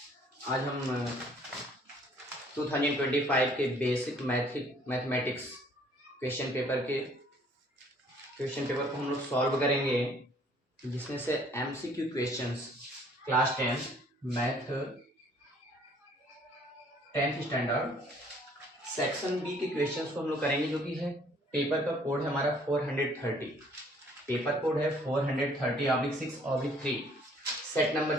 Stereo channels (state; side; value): normal; both; correlation 0.59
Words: आज हम 2025 के बेसिक मैथमेटिक्स क्वेश्चन पेपर को हम लोग सॉल्व करेंगे, जिसमें से MCQ questions class 10 math 10th standard section B के क्वेश्चंस को हम लोग करेंगे, जो कि है पेपर का कोड है हमारा 430। पेपर कोड है 430/6/3 सेट नंबर